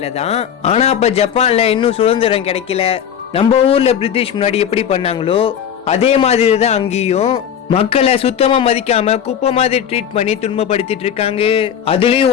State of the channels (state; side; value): quieter; right; 8.8 dB